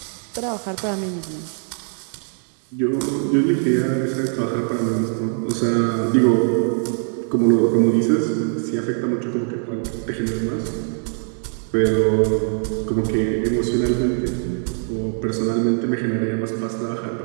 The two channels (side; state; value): left; silent; 56 dB below the other